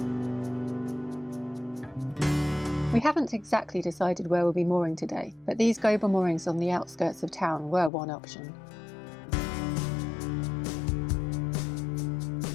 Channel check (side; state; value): right; drops out; at 7.9 s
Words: We haven't exactly decided where we'll be mooring today, but these Gober moorings on the outskirts of town were one option.